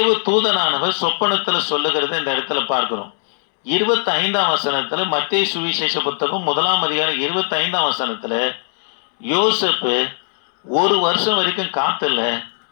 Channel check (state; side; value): silent; right; 67 dB below the other